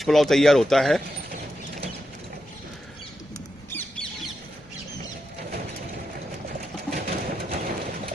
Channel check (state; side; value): normal; both; correlation 0.86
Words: पुलाव तैयार होता है।